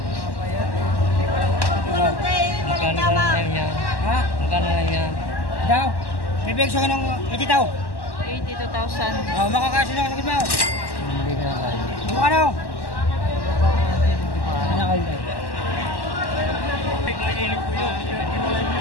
Magkano lang yan? Ha? Magkano lang yan? Daw? Bibig siya ng 80 daw. 82,000. Oh, makakasya na ako mo. Hindi ka na tayo. Ano? Ano kayo?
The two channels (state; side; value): late; right; 1.1 ms